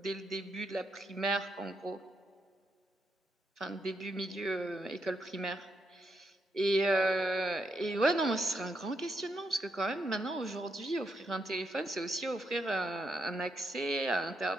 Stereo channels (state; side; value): normal; both; correlation 0.80